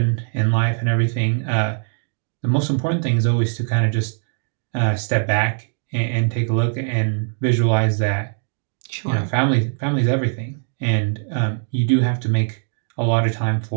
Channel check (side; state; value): left; silent; digital silence